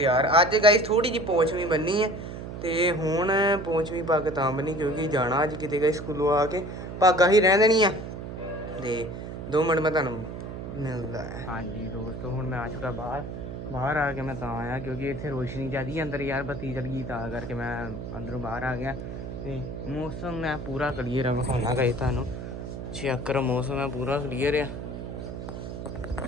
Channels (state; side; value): noise; right; hum, 8 dB below the sound